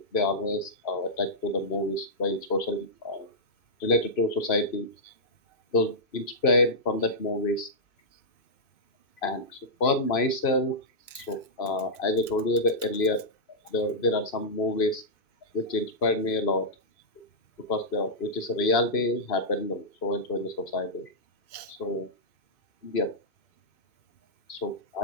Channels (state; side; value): late; right; 2.6 ms